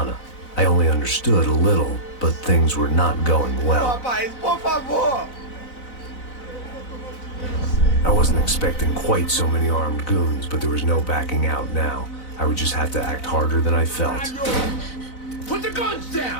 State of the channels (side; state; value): right; late; 4.0 ms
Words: I only understood a little, but things were not going well. Rapaz, por favor! I wasn't expecting quite so many armed goons, but there was no backing out now. I would just have to act harder than I felt. Put the guns